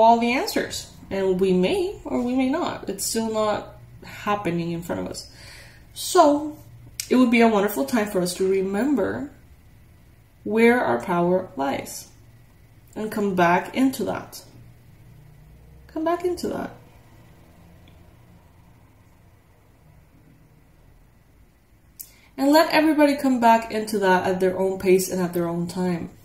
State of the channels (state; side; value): identical; both; correlation 1.00